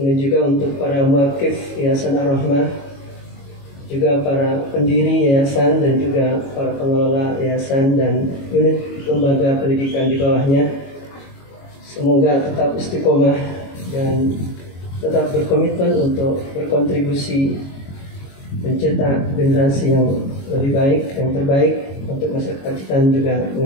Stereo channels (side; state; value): right; late; 22 ms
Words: juga untuk para muakif Yayasan Ar-Rahmah, juga para pendiri yayasan dan juga para pengelola yayasan dan unit lembaga pendidikan di bawahnya. Semoga tetap istiqomah dan tetap berkomitmen untuk berkontribusi mencetak generasi yang lebih baik, yang terbaik untuk masyarakat kita dan juga